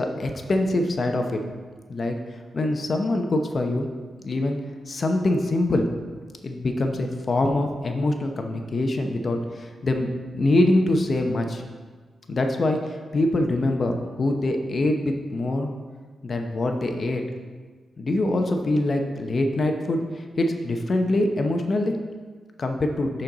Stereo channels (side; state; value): both; normal; correlation 0.89